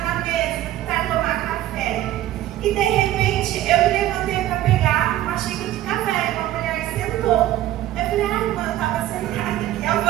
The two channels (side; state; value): left; quieter; 13.8 dB